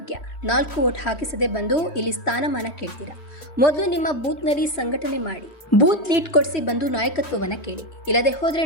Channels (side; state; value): right; late; 3.1 ms